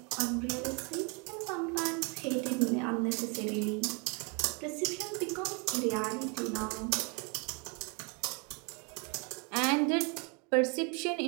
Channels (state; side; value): quieter; left; 33.4 dB